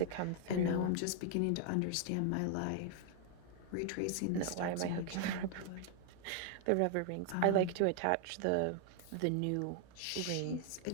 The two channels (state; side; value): different; both; correlation 0.00